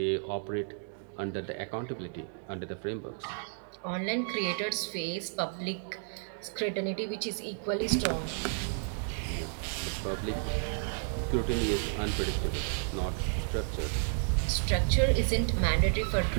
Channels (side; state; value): left; silent; 56 dB below the other